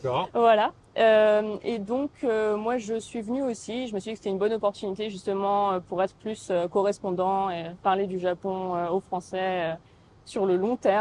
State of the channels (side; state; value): both; identical; correlation 1.00